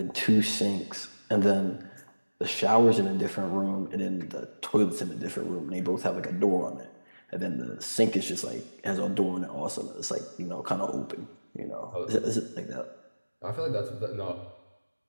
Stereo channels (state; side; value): inverted; both; correlation -1.00